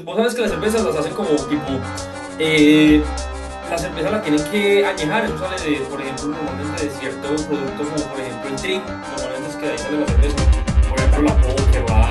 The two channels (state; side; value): identical; both; correlation 1.00